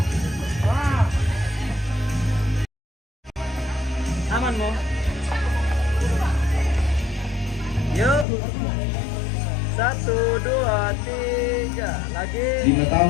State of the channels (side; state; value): right; drops out; at 8.2 s